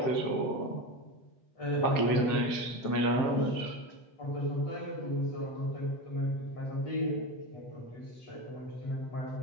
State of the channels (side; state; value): right; late; 7.6 ms